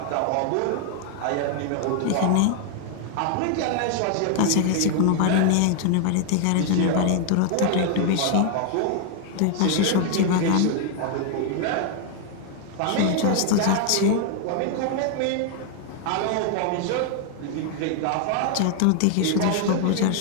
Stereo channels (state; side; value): different; both; correlation 0.00